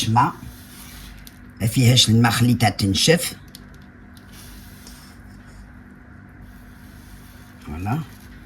ماء، ما فيهاش الماء، خليتها تنشف. فوالا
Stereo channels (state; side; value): identical; both; correlation 1.00